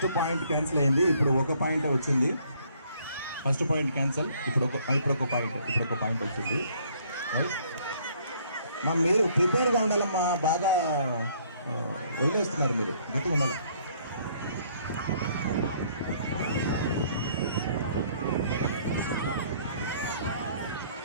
point cancel అయింది, ఇప్పుడు ఒక పాయింట్ వచ్చింది. ఫస్ట్ పాయింట్ క్యాన్సిల్, ఇప్పుడు ఒక పాయింట్ వచ్చింది. మా మీరు ప్రిపేర్గా ఉండాలమ్మా, బాగా వదిలేస్తున్నారు మీరు, గట్టిగా ఉండాలి.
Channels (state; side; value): inverted; both; correlation -0.63